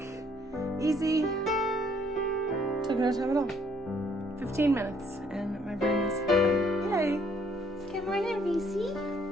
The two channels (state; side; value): normal; both; correlation 0.65